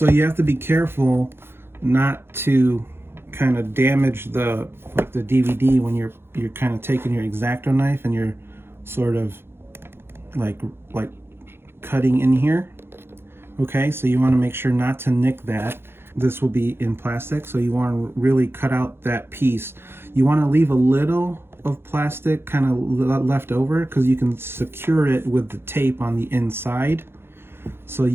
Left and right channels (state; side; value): late; left; 0.11 ms